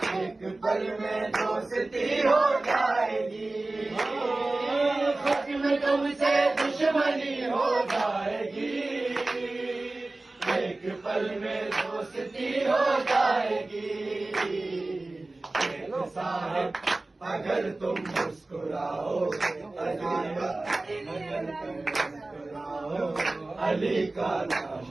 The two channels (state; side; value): quieter; left; 3.0 dB